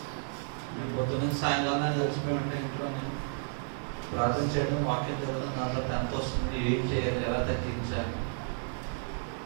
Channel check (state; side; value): silent; left; 57 dB below the other